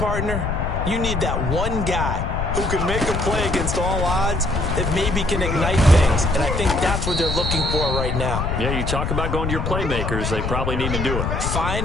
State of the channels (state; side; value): noise; left; rumble, 2 dB below the sound